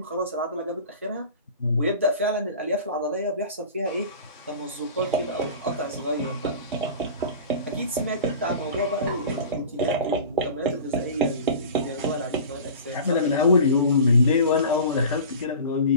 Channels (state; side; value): inverted; both; correlation -0.38